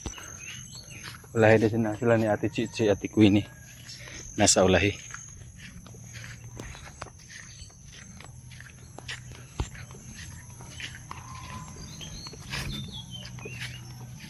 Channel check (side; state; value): both; identical; correlation 1.00